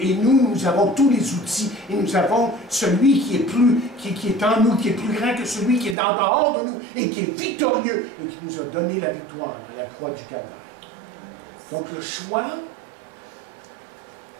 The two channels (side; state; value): left; drops out; at 6.0 s